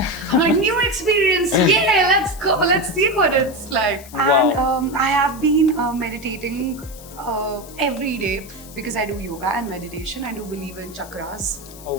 I'm like, new experience, yeah, let's go, let's see what it's like. Wow. And I have been meditating every day because I do yoga and meditation. I do believe in chakras, Oh,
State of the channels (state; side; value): noise; left; hiss, 18 dB below the sound